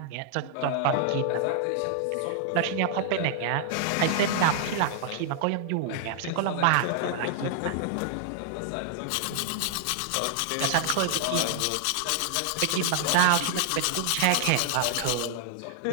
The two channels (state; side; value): different; both; correlation -0.01